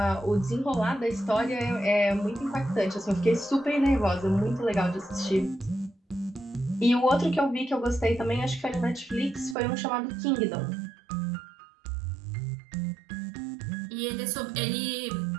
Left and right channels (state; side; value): drops out; left; at 9.6 s